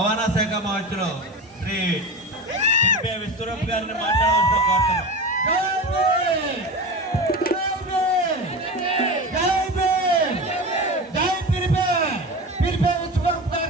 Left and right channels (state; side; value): normal; both; correlation 0.28